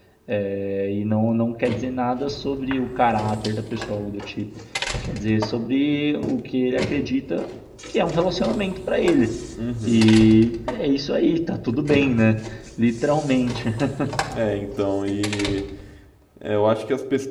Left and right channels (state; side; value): identical; both; correlation 1.00